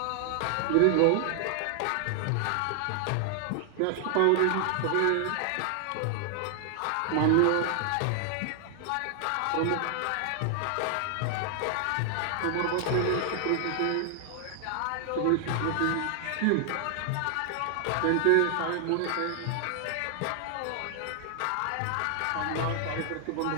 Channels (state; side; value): different; both; correlation 0.00